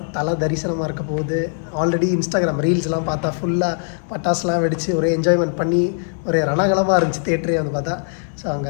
தலை தரிசனமாக இருக்க போகுது. ஆல்ரெடி இன்ஸ்டாகிராம் ரீல்ஸ்லாம் பார்த்தா ஃபுல்லாக பட்டாசுலாம் வெடித்து ஒரே என்ஜாய்மெண்ட் பண்ணி ஒரே ரணகலமாக இருந்துச்சு தேட்டரே வந்து பார்த்தா. ஸோ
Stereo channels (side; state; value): right; silent; digital silence